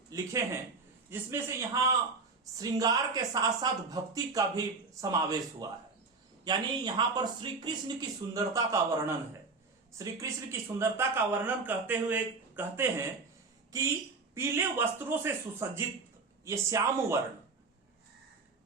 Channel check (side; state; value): left; quieter; 4.1 dB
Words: लिखे हैं, जिसमें से यहां श्रृंगार के साथ साथ भक्ति का भी समावेश हुआ है। यानी यहां पर श्री कृष्ण की सुंदरता का वर्णन है। श्री कृष्ण की सुंदरता का वर्णन करते हुए कहते हैं कि पीले वस्त्रों से सुसज्जित ये श्याम वर्ण